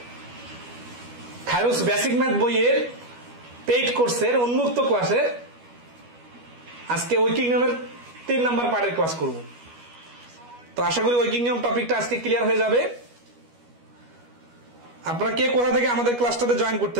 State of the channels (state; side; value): late; left; 12 ms